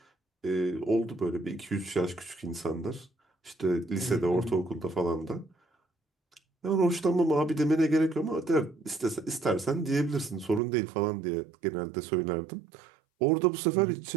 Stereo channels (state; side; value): drops out; left; at 10.6 s